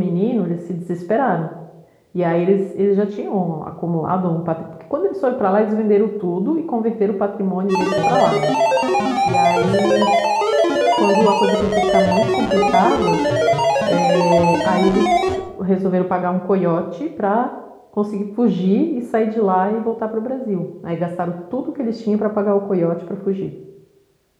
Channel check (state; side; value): identical; both; correlation 1.00